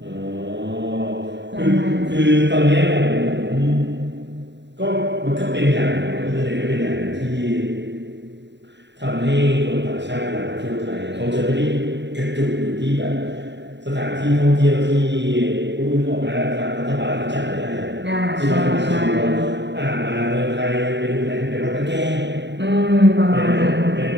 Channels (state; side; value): late; left; 0.52 ms